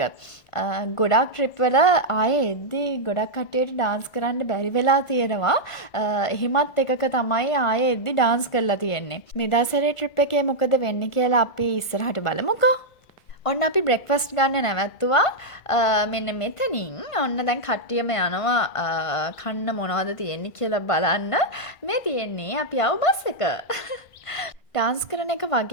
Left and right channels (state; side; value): late; right; 1.4 ms